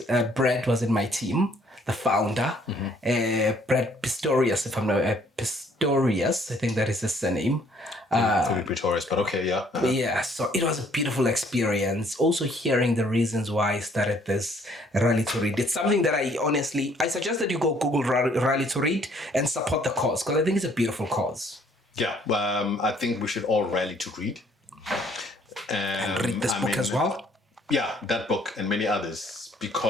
Brad was in my team, the founder, Brad Pistorius, if I'm not Pistorius, I think that is his surname. Could be Pretorius, but okay, yeah. Yeah, so it was a beautiful experience. Also hearing the reasons why I started this Rally to Read. It's something that I suggest that you go Google Rally to Read and support the cause, because I think it's a beautiful cause. Yeah, I think we should all rally to read. And read this book as well? Yeah, that book and many others,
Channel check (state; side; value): normal; both; correlation 0.62